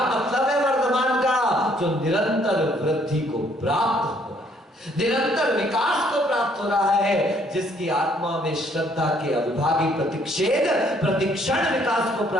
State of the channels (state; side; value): normal; both; correlation 0.65